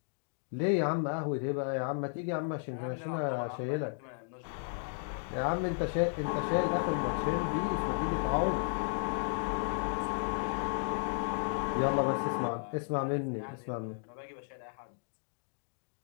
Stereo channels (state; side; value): silent; right; digital silence